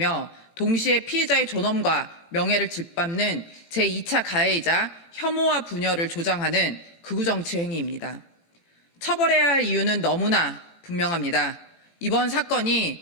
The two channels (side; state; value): right; late; 17 ms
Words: 동시에 피해자의 존엄과 명예를 짓밟는 제2차 가해이자 혐오와 분열을 조장하는 극우정치 행위입니다. 처벌해야 할 이유는 너무나 분명합니다. 이번